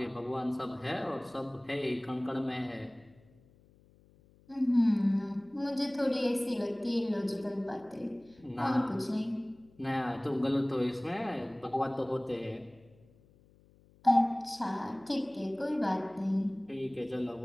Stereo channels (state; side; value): noise; left; hum, 28 dB below the sound